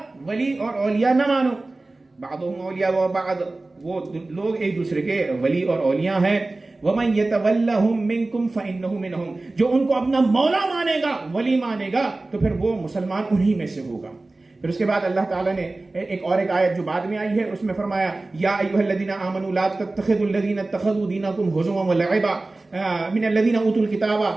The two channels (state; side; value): quieter; left; 3.1 dB